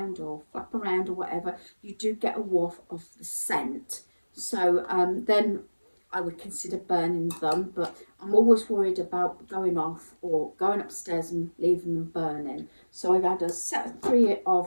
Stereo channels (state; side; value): inverted; both; correlation -1.00